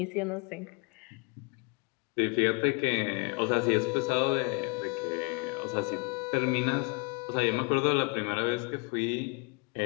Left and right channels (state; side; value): quieter; right; 32.2 dB